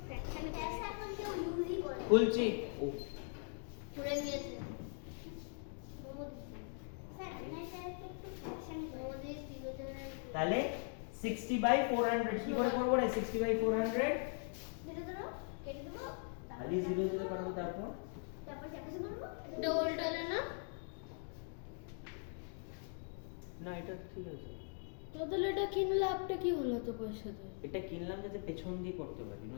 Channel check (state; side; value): silent; right; 51 dB below the other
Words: ফ্র্যাকশন পয়সা এখন কেউ ইউজই করে খুলছি ও পড়ে গিয়েছে স্যার আমি এটাকে একটু ফ্র্যাকশন করে তাহলে 60 বাই 400 কি করে করব রে 60 বাই 400 কেটে দেবো খালি 0 0 করব তারপর তারপর ক্যাপেসে করব এটা উল্টালে না না এটা ঠিক আছে তোদের এটা কিনলে লাভটা কি হলো তো পয়সা দিয়ে এটা কিনলাম যাতে পেছন দিয়ে করতে পারি